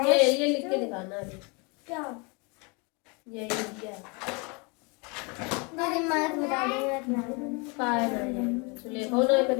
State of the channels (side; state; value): right; quieter; 30.9 dB